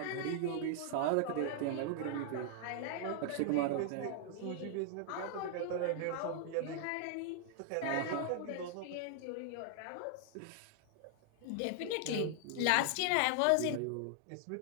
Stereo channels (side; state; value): both; different; correlation 0.00